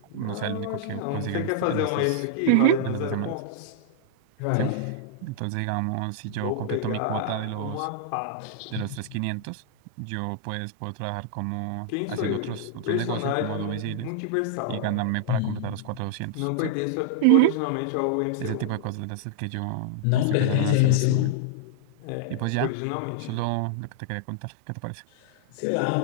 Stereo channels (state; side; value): different; both; correlation -0.01